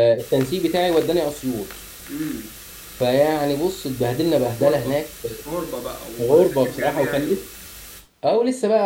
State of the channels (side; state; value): both; identical; correlation 1.00